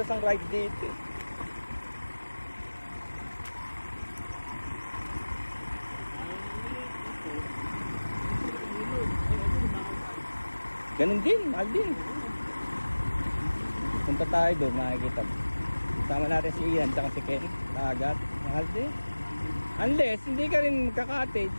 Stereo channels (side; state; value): both; inverted; correlation -1.00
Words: ang ride dito. Ganun din, mahal din. Punta tayo doon, makikita. Sama natin si Ian, tsaka si Ken. Dagat, mahal din. Unless, hindi ka rin magka-cottage.